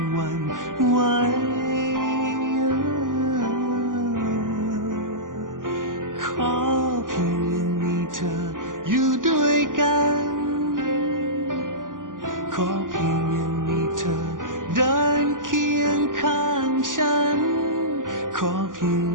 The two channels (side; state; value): left; late; 0.89 ms